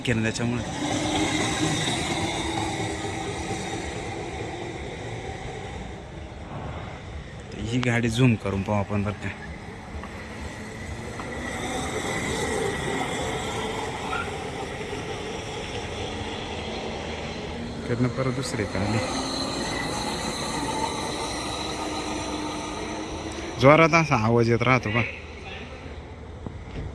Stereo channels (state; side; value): identical; both; correlation 1.00